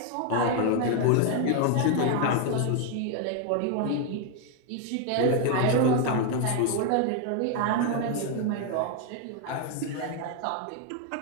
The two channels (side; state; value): both; different; correlation 0.01